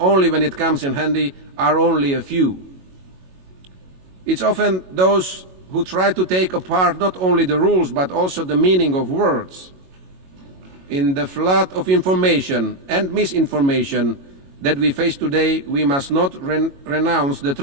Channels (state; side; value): late; left; 22 ms